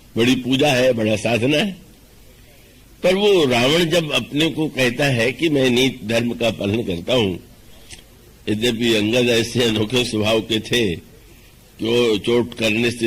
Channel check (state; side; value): identical; both; correlation 1.00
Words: बड़ी पूजा है, बड़ा साधना है। पर वो रावण जब अपने को कहता है कि मैं नीति धर्म का पालन करता हूं, यद्यपि अंगद ऐसे अनोखे स्वभाव के थे कि वो चोट करने